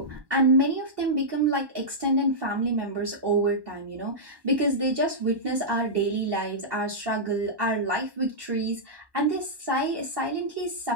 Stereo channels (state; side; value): late; left; 1.1 ms